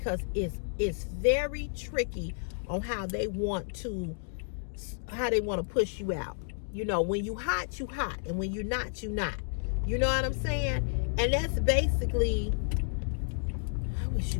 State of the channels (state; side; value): silent; right; digital silence